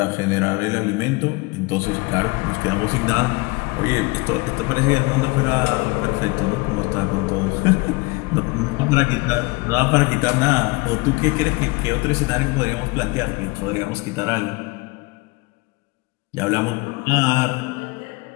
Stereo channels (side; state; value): right; quieter; 25.0 dB